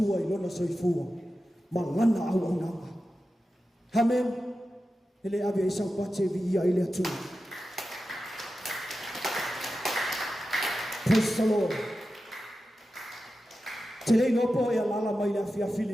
i lona soifua ma ngana au ananga. Amen. Ele ave isau pate vi ia i le atua. Praise the Lord. Te rei nopo e alala mai le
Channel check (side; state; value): both; normal; correlation 0.92